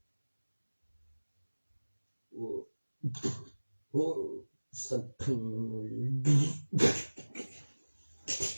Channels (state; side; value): inverted; both; correlation -1.00